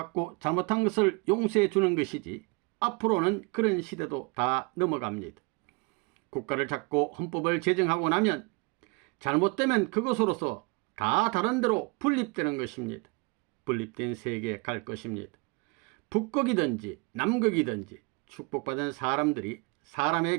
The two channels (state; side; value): quieter; left; 29.6 dB